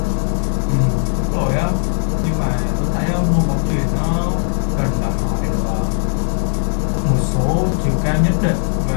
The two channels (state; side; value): silent; right; 61 dB below the other